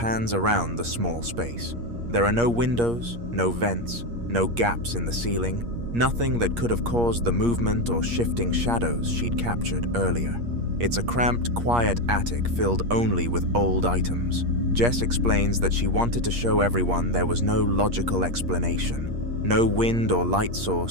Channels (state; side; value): late; left; 8.5 ms